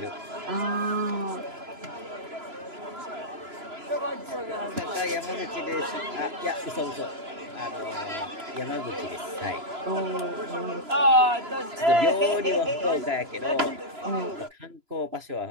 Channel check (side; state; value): left; late; 3.0 ms